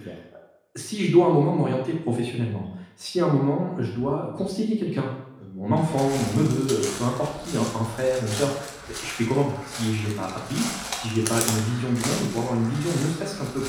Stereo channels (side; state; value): both; identical; correlation 1.00